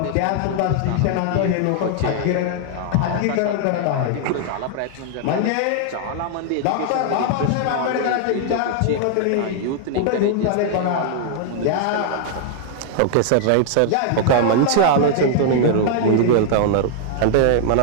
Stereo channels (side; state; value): both; different; correlation 0.00